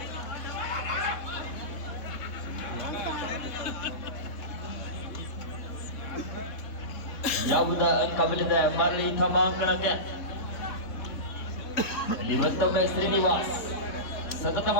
ಯಾವುದ ಅಂಕ ಬಲಿದೆ ಮರಳಿ ತಮ್ಮ ಅಂಕಣಕ್ಕೆ. ಇಲ್ಲಿ ಮತ್ತೊಮ್ಮೆ ಶ್ರೀನಿವಾಸ್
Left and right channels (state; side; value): late; right; 3.8 ms